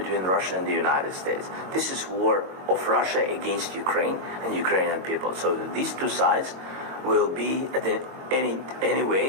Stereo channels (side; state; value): left; late; 22 ms